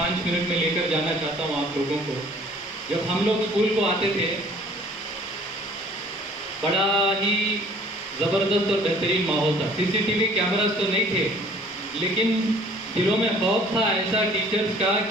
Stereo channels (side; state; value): both; normal; correlation 0.53